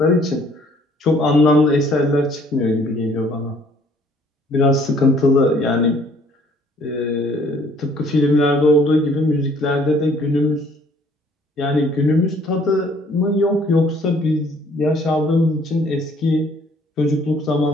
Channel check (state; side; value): normal; both; correlation 0.60